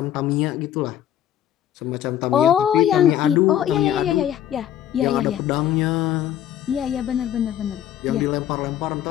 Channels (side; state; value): right; quieter; 11.0 dB